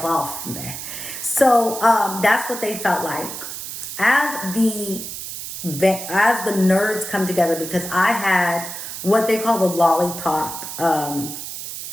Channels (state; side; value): noise; right; hiss, 8 dB below the sound